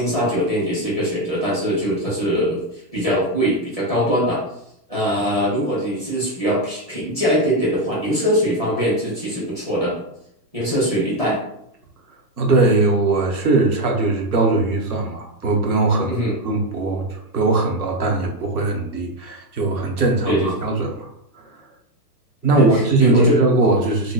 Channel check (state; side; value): late; right; 1.7 ms